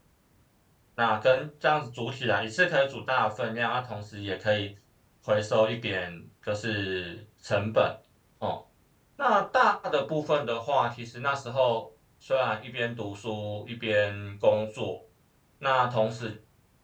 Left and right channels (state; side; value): identical; both; correlation 1.00